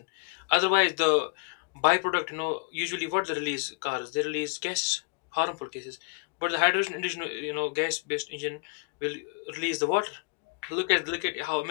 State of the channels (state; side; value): quieter; right; 34.4 dB